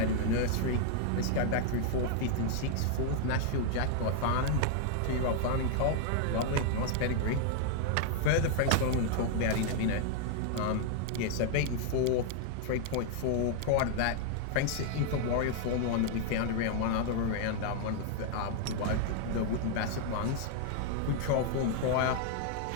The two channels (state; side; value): different; both; correlation 0.00